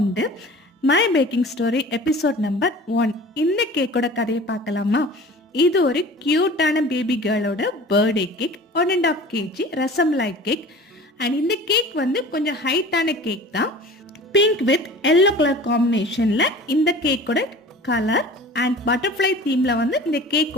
My packing story episode number 1. இந்த கேக்கோட கதையை பார்க்கலாமா? இது ஒரு கியூட்டான baby கேர்ளோட birthday cake, 1.5 kg rasmalai cake. And இந்த கேக் வந்து கொஞ்சம் ஹைட்டான கேக் தான். பிங்க் வித் எல்லோ கலர் காம்பினேஷனில் இந்த கேக்கோட கலர் அண்ட் பட்டர்ஃப்ளை தீமில் வந்து இந்த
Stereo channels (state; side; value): normal; both; correlation 0.41